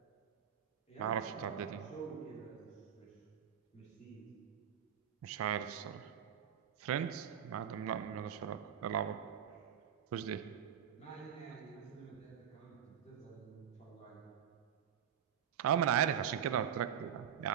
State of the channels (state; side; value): quieter; left; 8.9 dB